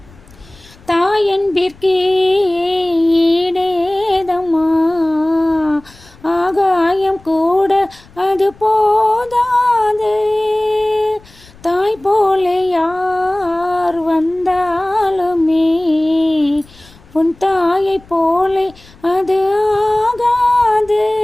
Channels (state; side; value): noise; left; rumble, 25 dB below the sound